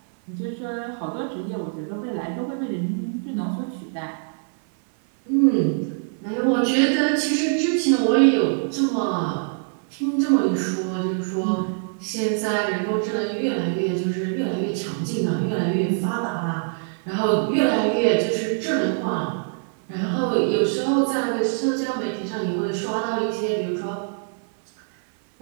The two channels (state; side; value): silent; left; 59 dB below the other